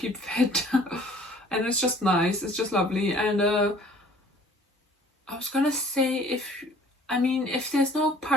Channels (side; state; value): both; normal; correlation 0.53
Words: fit. And it's just nice, it's just lovely. And I was gonna say, if there's no